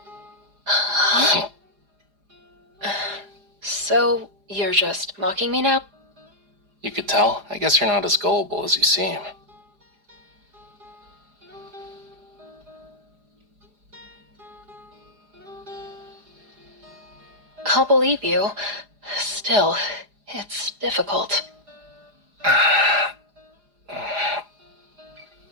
Huh? So, you're just mocking me now? You could tell. I guess you're not as gullible as you seem. I'll believe you. Still, it's difficult.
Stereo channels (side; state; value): left; late; 4.9 ms